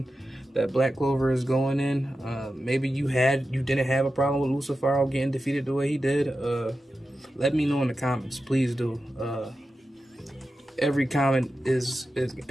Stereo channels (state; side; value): normal; both; correlation 0.92